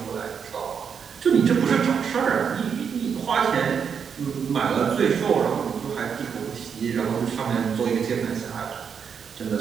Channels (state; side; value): quieter; left; 6.9 dB